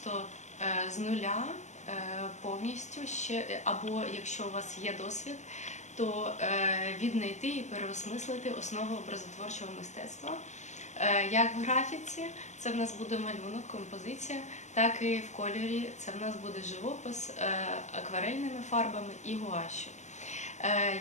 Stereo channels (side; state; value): right; late; 0.34 ms